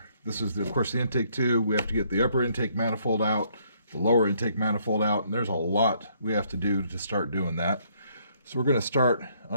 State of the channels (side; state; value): both; inverted; correlation -0.68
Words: This is, of course, the intake 2. We have to get the upper intake manifold out, the lower intake manifold out, and there's a lot we have to do to start doing that. So we're going to start